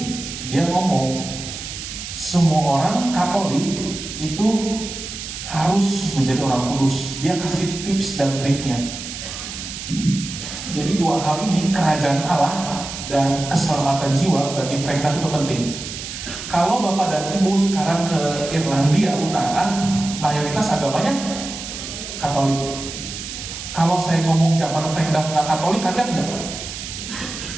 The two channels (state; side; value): noise; right; hiss, 9 dB below the sound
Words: dia ngomong semua orang Katolik itu harus menjadi orang kudus. Dia kasih tips dan triknya. Jadi dua hal ini, kerajaan Allah dan keselamatan jiwa, bagi Frank Duff itu penting. Kalau Bapak dan Ibu sekarang ke Irlandia Utara, mayoritas agamanya Katolik. Kalau saya ngomong zaman Frank Duff nggak Katolik, kaget nggak?